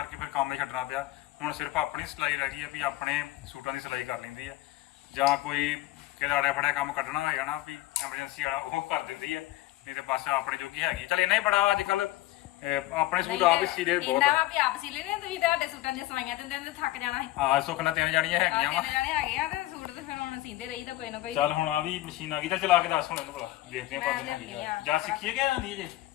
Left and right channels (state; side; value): quieter; right; 16.5 dB